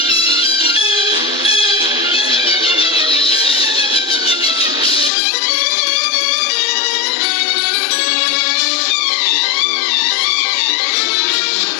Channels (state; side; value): drops out; right; at 5.1 s